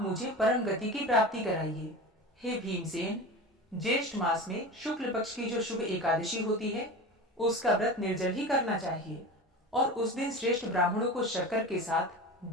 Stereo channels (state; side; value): normal; both; correlation 0.31